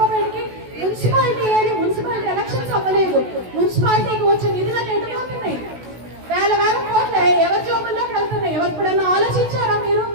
మున్సిపాలిటీ ఏది? మున్సిపాలిటీ ఎలక్షన్స్ అవ్వలేదు. మున్సిపాలిటీకి వచ్చే నిధులను ఎటుపోతున్నాయి? 1000 కోట్లు ఎవరి జోబుల్లోకి వెళ్తున్నాయి? ఎవరిప్పుడైనా ఆలోచించారా మీరు?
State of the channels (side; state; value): left; late; 16 ms